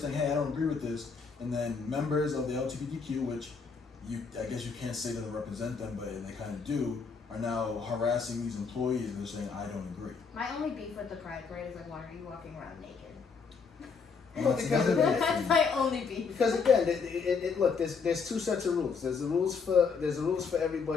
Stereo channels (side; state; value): right; quieter; 5.4 dB